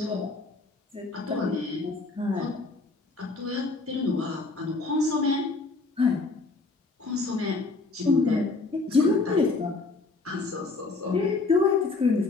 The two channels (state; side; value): quieter; right; 3.6 dB